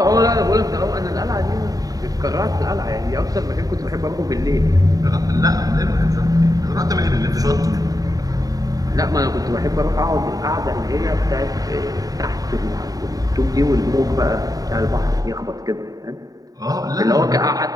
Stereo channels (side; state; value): left; late; 0.18 ms